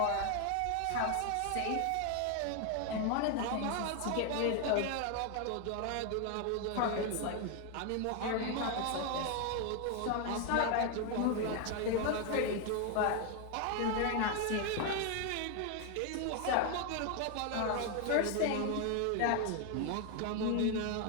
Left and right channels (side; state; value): both; different; correlation 0.01